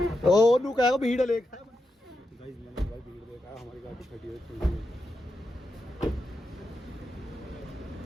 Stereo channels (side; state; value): both; normal; correlation 0.87